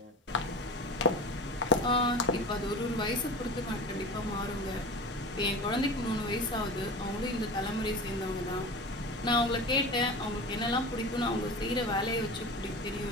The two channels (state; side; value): normal; both; correlation 0.32